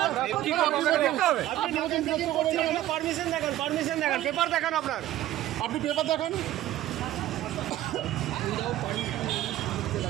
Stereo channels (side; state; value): left; quieter; 14.1 dB